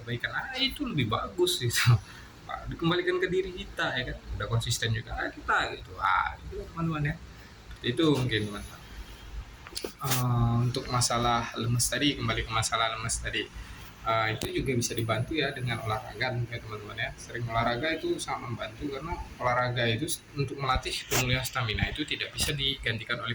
itu lebih bagus gitu. Dikembalikan ke diri kita ya kan, udah konsisten juga kita gitu. Itu teman-teman ya, itu mungkin teman-teman. Untuk masalah lemes tadi, kembali ke masalah lemes tadi, itu juga bisa dibantu ya dengan olahraga ya teman-teman ya. Sering olahraga itu sangat membantu, karena olahraga itu untuk melatih pemulihan stamina itu tidak bisa digantikan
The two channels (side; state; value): both; identical; correlation 1.00